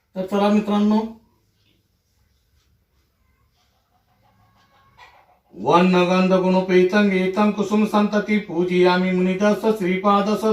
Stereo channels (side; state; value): both; identical; correlation 1.00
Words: तर चला मित्रांनो, वन्नगंध गुणोपेतं एतं कुसुम संतति पूजयामि मुनिदस्स श्रीपाद